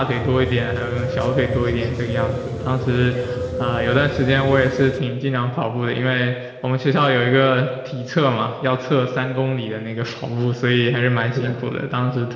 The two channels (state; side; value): identical; both; correlation 1.00